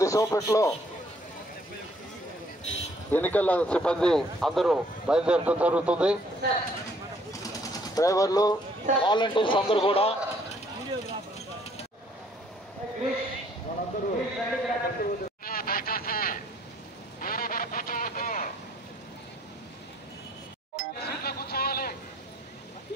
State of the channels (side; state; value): both; normal; correlation 0.63